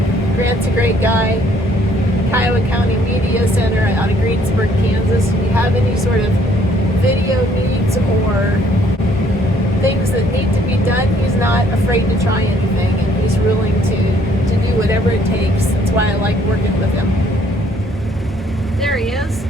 Grant's a great guy. Kiowa County Media Center out of Greensburg, Kansas. If you have any sort of video needs or things that need to be done, he's not afraid to try anything, and he's willing to do whatever it takes. That's why I like working with him. There he is.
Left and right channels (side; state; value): both; normal; correlation 0.63